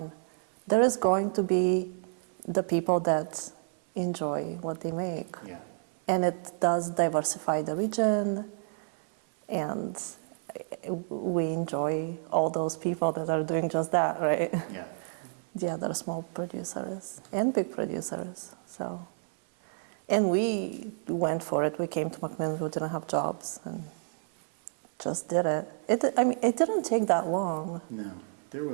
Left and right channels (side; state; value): left; silent; 58 dB below the other